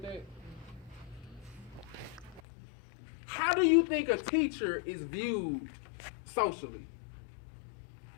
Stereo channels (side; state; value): right; drops out; at 2.4 s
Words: that? How do you think a teacher is viewed socially?